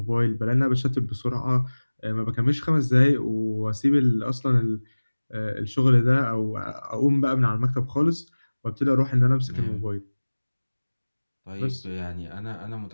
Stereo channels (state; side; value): inverted; both; correlation -1.00